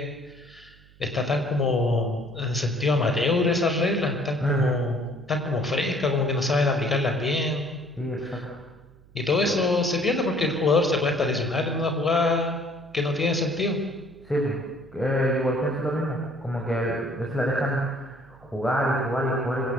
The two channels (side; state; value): right; noise; hum, 26 dB below the sound